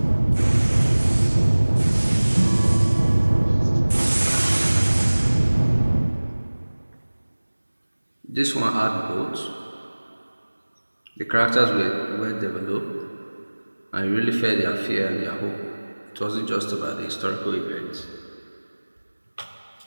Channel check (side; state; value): both; inverted; correlation -1.00